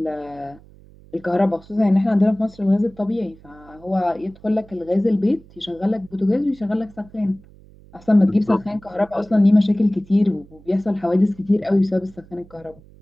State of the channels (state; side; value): noise; right; hum, 24 dB below the sound